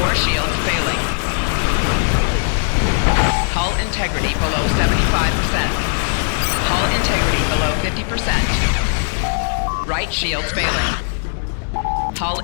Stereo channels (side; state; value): right; silent; digital silence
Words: shields failing. Hull integrity below 75%. Hull integrity below 50%. Right shields failing. Hull